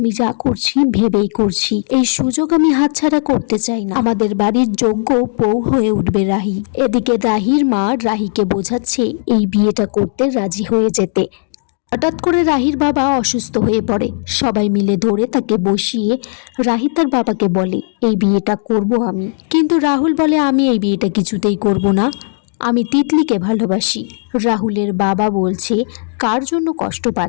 যা করছি ভেবেই করছি, এই সুযোগ আমি হাতছাড়া করতে চাই না, আমাদের বাড়ির যোগ্য বউ হয়ে উঠবে রাহি। এদিকে রাহির মা রাহিকে বোঝাচ্ছে এই বিয়েটা করতে রাজি হয়ে যেতে। হঠাৎ করে রাহির বাবা অসুস্থ হয়ে পড়ে, সবাই মিলে ধরে তাকে বসিয়ে রাহি তার বাবাকে বলে এই বিয়েটা করব আমি। কিন্তু রাহুল বলে আমি এই বিয়েটা কিছুতেই করব না, আমি তিতলিকে ভালোবাসি। রাহুলের বাবা বলছে কার জন্য কষ্ট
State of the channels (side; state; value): right; silent; digital silence